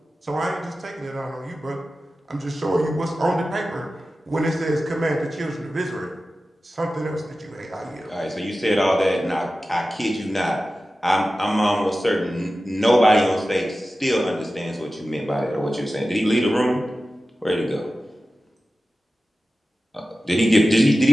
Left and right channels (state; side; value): normal; both; correlation 0.95